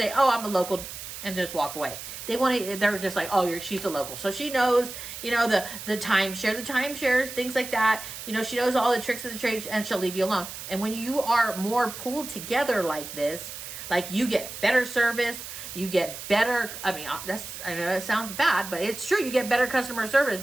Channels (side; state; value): right; noise; hiss, 10 dB below the sound